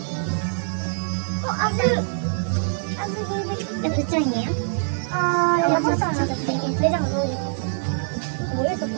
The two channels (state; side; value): silent; left; digital silence